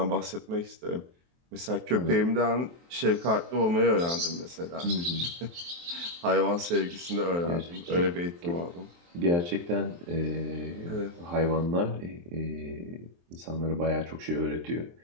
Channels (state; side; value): late; left; 23 ms